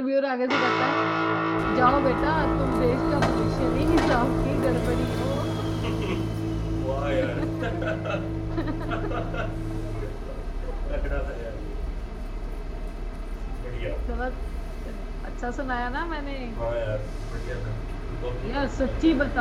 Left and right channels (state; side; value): identical; both; correlation 1.00